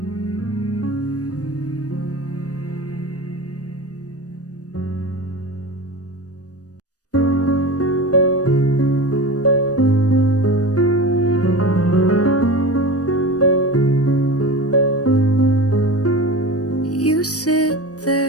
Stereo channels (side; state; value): right; late; 0.67 ms